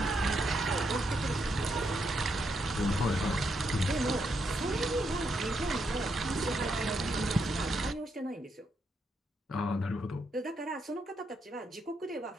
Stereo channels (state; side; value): normal; both; correlation 0.79